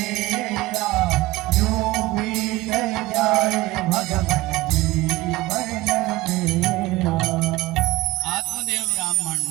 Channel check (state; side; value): quieter; left; 18.5 dB